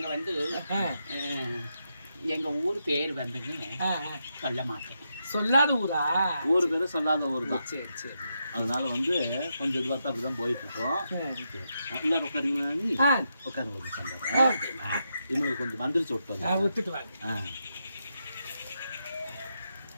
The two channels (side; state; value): both; inverted; correlation -0.84